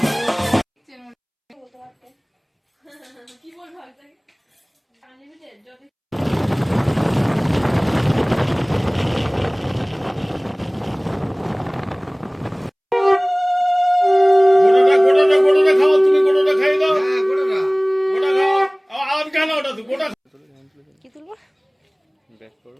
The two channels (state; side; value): identical; both; correlation 1.00